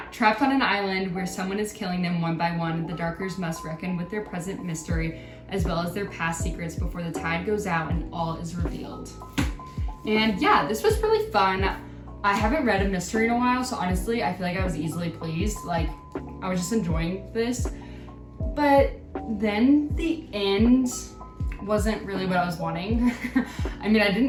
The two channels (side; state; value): both; identical; correlation 1.00